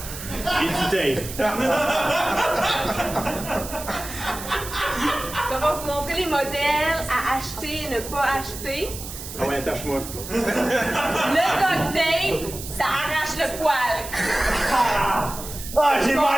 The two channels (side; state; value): right; noise; hiss, 11 dB below the sound